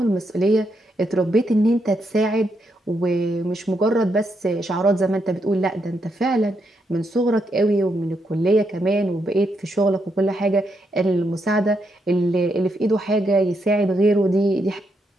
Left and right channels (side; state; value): both; normal; correlation 0.80